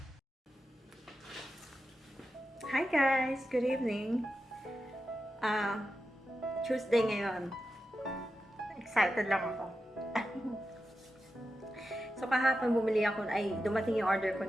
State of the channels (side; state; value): both; normal; correlation 0.90